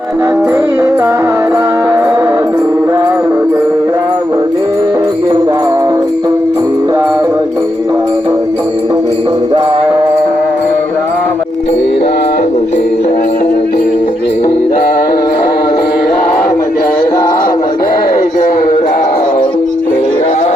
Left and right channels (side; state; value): both; normal; correlation 0.81